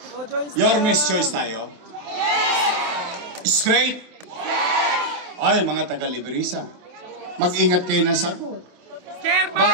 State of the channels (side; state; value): left; late; 27 ms